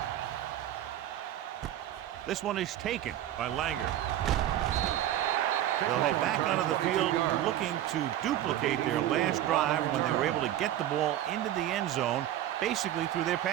This one is taken by Langer. They'll head back onto the field looking to duplicate their last drive when they were able to get the ball into the end zone, basically through their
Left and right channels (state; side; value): quieter; left; 12.4 dB